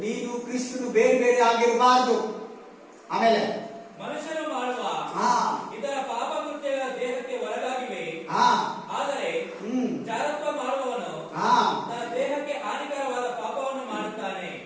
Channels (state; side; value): identical; both; correlation 1.00